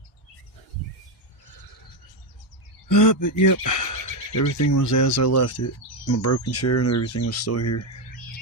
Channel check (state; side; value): normal; both; correlation 0.08